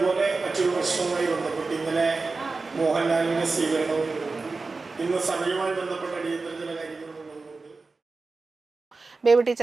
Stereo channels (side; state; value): left; quieter; 3.9 dB